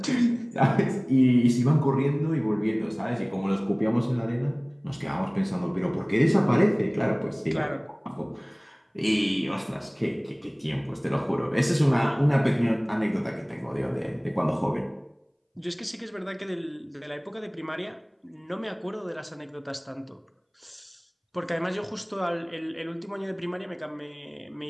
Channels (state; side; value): identical; both; correlation 1.00